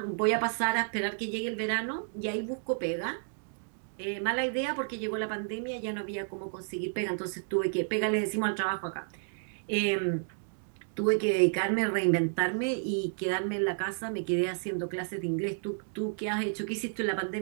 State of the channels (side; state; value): left; silent; digital silence